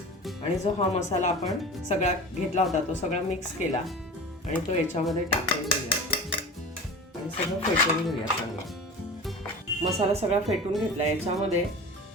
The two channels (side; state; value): both; normal; correlation 0.34